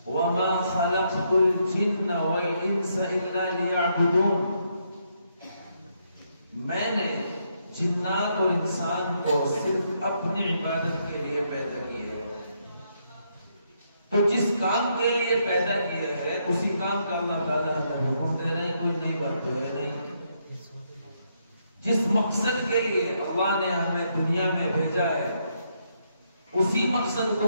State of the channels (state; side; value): inverted; both; correlation -0.76